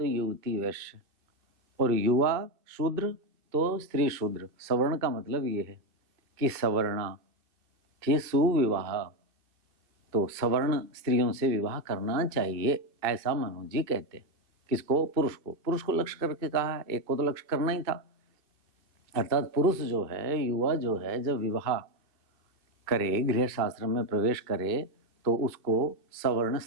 युवती वैश्य, और युवा शूद्र तो स्त्री शूद्र। सवर्ण का मतलब ये है कि सवर्णा कि सुविवाह, तो सवर्ण स्त्रियों से विवाह करना चाहिए, ऐसा मनु जी कहते हैं। किसको? पुरुष को। पुरुष को लक्ष्य करके कहा है, एक को तो लक्ष्य करना ही था। अर्थात पुरुष जो है, युवा जो है, जब विवाह करे, गृह शास्त्र में प्रवेश करे, तो उसको सवर्ण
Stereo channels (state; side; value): late; left; 2.4 ms